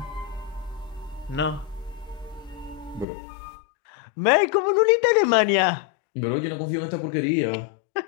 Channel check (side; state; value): right; drops out; at 3.1 s